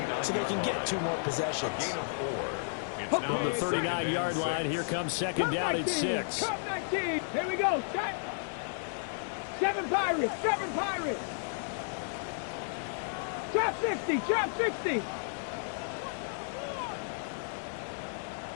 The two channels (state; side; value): silent; right; digital silence